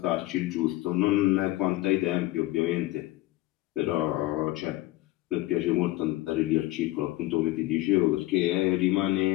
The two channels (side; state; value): right; quieter; 17.7 dB